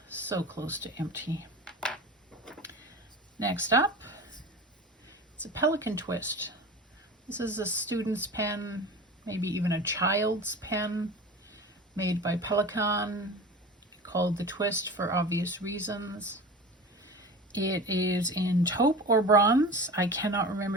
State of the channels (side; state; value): both; normal; correlation 0.34